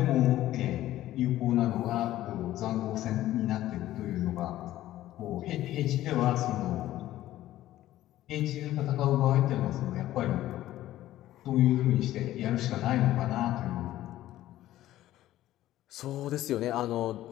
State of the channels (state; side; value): quieter; right; 14.3 dB